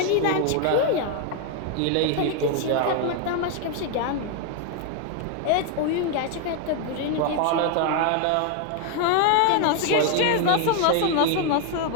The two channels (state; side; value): different; both; correlation 0.00